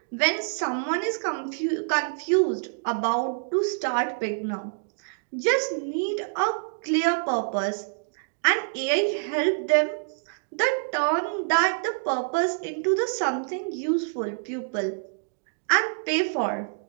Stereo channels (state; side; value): silent; left; digital silence